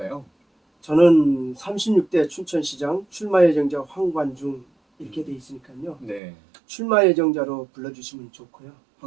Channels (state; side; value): drops out; left; at 6.2 s